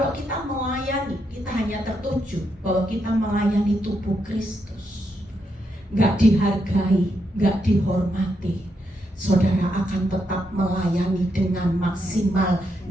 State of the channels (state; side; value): normal; both; correlation 0.81